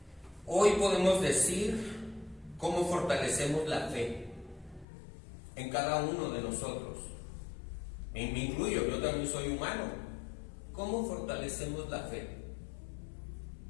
Hoy podemos decir cómo fortalecemos la fe en cada uno de nosotros. Me incluyo, yo también soy humano. ¿Cómo fortalecemos la fe?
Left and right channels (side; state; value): right; drops out; at 4.9 s